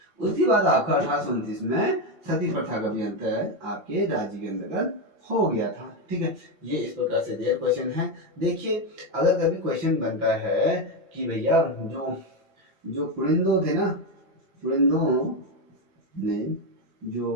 आपका 1829 में सती प्रथा का भी अंत है आपके राज्य के अंतर्गत हो गया था। ठीक है, ये इस प्रकार से दिया क्वेश्चन है। देखिए अगर कभी क्वेश्चन बनता है कि भैया जो जो कुलिंदो थे ना, कुलिंदो ने जो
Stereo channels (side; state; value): left; late; 5.9 ms